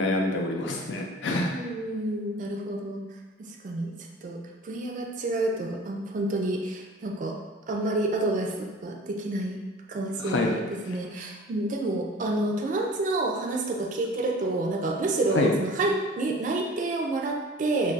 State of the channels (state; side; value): normal; both; correlation 0.43